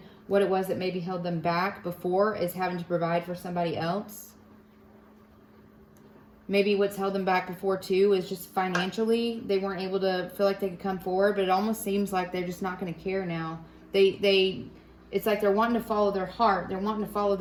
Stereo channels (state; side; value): identical; both; correlation 1.00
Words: what it was that maybe held them back before, is having to provide for somebody else. Maybe what's held them back before too is just financially. They weren't able to feel like they could come forward, but it almost seems like they're just not going to care now. It's like they're wanting to follow their heart. They're wanting to follow